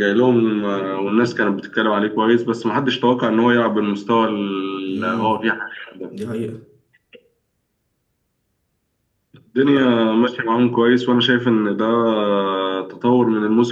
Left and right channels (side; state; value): both; identical; correlation 1.00